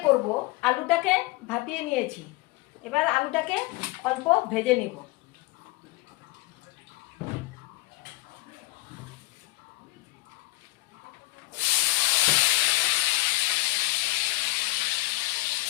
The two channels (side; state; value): right; quieter; 21.2 dB